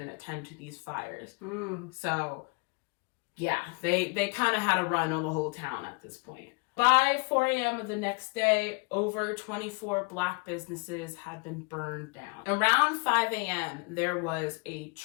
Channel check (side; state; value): right; quieter; 32.1 dB